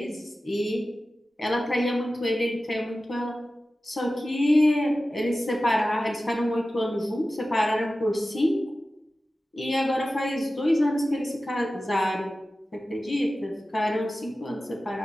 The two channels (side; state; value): both; normal; correlation 0.95